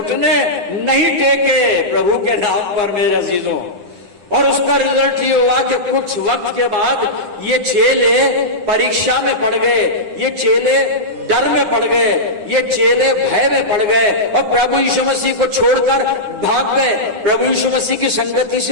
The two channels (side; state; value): left; late; 9.9 ms